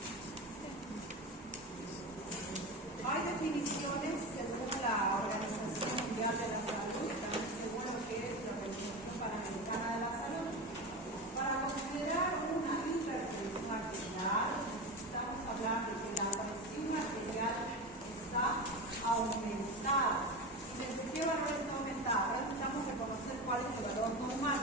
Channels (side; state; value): both; normal; correlation 0.23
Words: Hay definiciones según la Organización Mundial de la Salud, también según lo que es la Organización Panamericana de la Salud. Para considerar una hipertensión arterial, necesitamos hablar de que la presión arterial está aumentada. ¿Y desde qué valor está aumentada? Ahora necesitamos reconocer cuál es el valor normal.